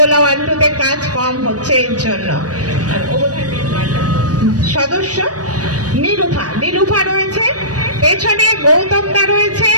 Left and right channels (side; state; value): left; late; 0.68 ms